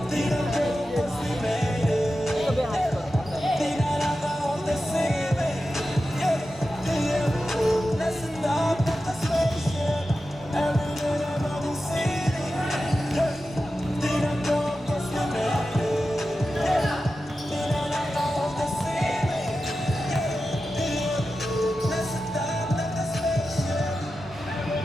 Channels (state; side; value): normal; both; correlation 0.92